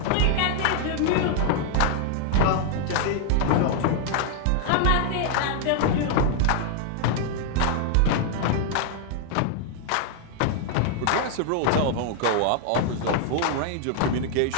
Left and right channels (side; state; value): both; different; correlation 0.00